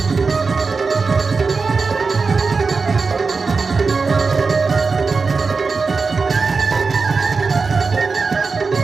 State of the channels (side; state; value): left; quieter; 4.5 dB